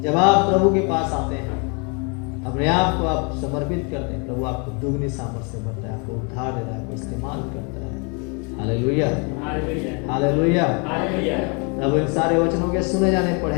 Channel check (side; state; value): right; quieter; 34.6 dB